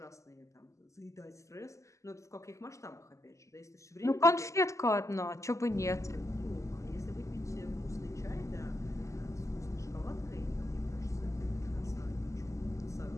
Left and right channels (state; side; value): late; right; 0.15 ms